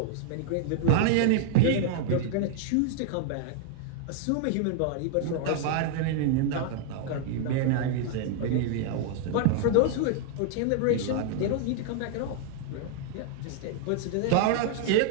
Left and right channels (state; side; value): different; both; correlation 0.00